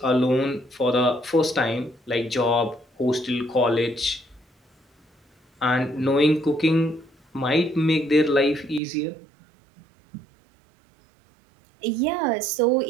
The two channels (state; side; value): drops out; left; at 8.8 s